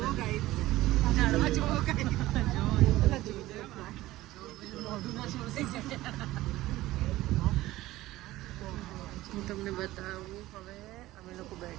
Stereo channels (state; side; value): quieter; left; 16.8 dB